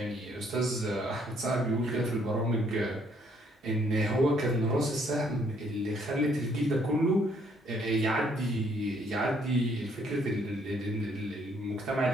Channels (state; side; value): normal; both; correlation 0.67